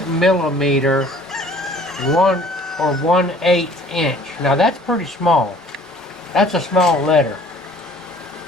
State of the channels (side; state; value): both; normal; correlation 0.53